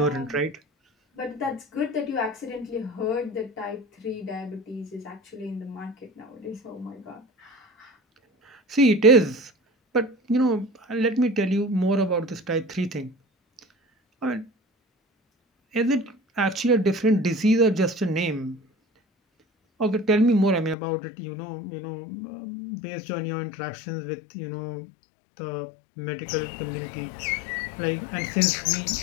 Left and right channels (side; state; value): right; drops out; at 20.8 s